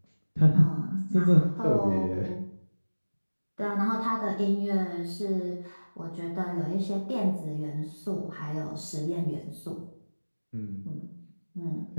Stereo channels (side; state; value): both; inverted; correlation -1.00